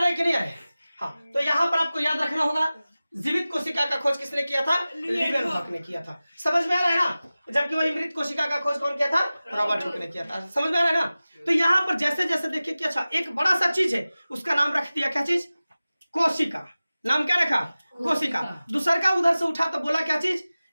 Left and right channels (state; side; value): inverted; both; correlation -0.97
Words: है कि नहीं आ रहा है। हाँ, तो यहाँ पर आपको याद रखना होगा, जीवित कोशिका का खोज किसने किया था, लीवेनहॉक ने किया था। समझ में आ रहा है ना। जबकि वही मृत कोशिका का खोज कौन किया था, रॉबर्ट हुक ने किया था। समझ में आ रहा है ना। तो यहाँ पर जैसे जैसे देखिए कि अच्छा एक बड़ा सा चीज है, उसका नाम रख दिया क्या चीज, कोशिका। नाम क्या रखा, कोशिका। दूसर का उधर से उठा तो बोला क्या चीज